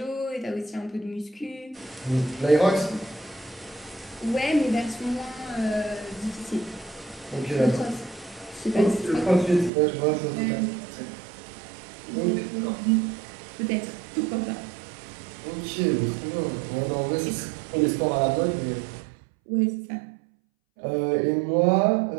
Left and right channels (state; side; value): drops out; left; at 9.7 s